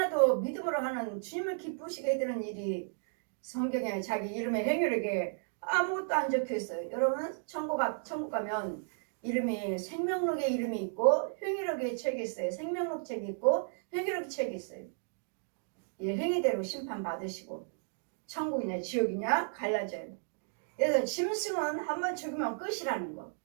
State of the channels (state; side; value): silent; left; digital silence